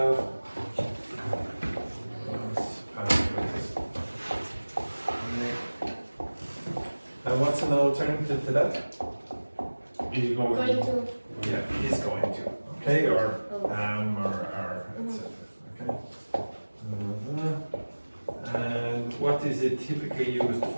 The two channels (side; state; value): both; inverted; correlation -1.00